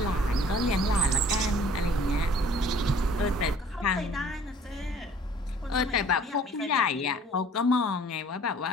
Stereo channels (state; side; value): normal; both; correlation 0.53